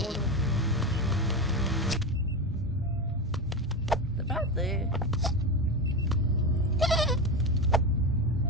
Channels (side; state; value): both; normal; correlation 0.19